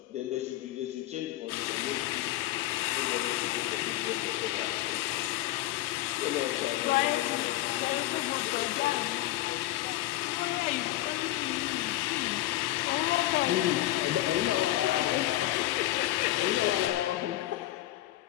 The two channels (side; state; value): right; quieter; 15.8 dB